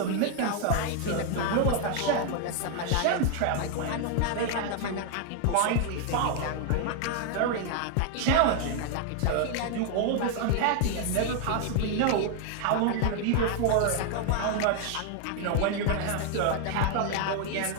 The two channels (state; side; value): different; both; correlation 0.00